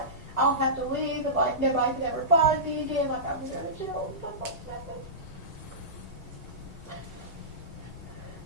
I'll have to leave, and like nobody can ever find me again, like I'm going to go to jail and stuff like that.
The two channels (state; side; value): normal; both; correlation -0.19